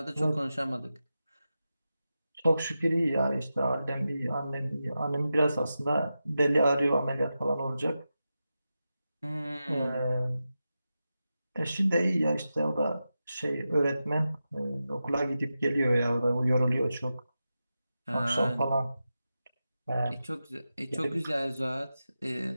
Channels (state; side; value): inverted; both; correlation -0.91